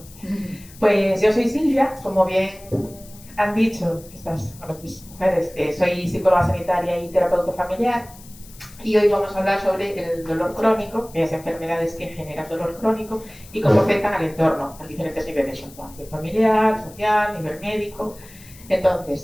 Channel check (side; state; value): left; noise; hiss, 21 dB below the sound